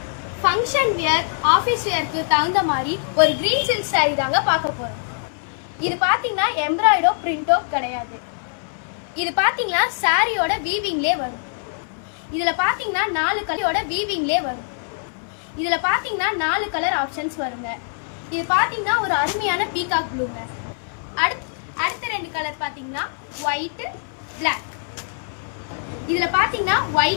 ஃபங்க்ஷன் வியர், ஆபீஸ் வியருக்கு தகுந்த மாதிரி ஒரு கிரீன் சில்க் saree தாங்க பார்க்க போறோம். இது பாத்தீங்கன்னா எம்ப்ராய்டோ பிரிண்டோ கிடையாது. இது பாத்தீங்கன்னா சாரியோட வீவிங்லயே வரும். இதுல பாத்தீங்கன்னா 4 கலரோட வீவிங்லயே வரும். இதுல பாத்தீங்கன்னா 4 கலர் ஆப்ஷன்ஸ் வருங்க. இது பாத்தீங்கன்னா ஒரு அருமையான பீகாக் ப்ளூங்க. அடுத்த 2 கலர் பாத்தீங்கன்னா ஒயிட், பிளாக். இதுல பாத்தீங்கன்னா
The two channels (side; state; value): right; silent; 57 dB below the other